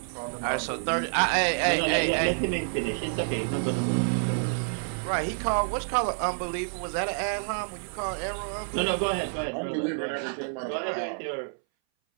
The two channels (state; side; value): silent; left; 59 dB below the other